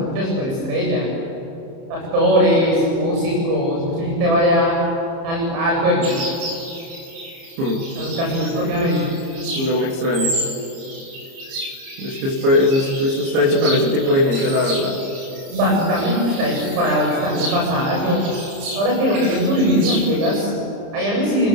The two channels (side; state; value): left; late; 30 ms